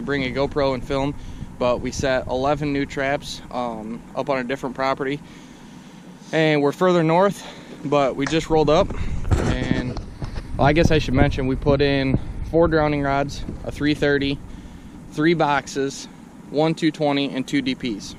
bring a GoPro and film, but we set 11 new traps up on a different property, and we're further north, but we just rolled up. And well, I guess I should mention we put in 4 drowning rods, a 330, 3 boxes, 1 220, and 2 DPs.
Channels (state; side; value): identical; both; correlation 1.00